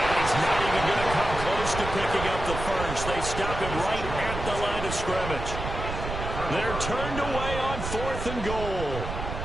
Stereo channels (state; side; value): noise; right; rumble, 6 dB below the sound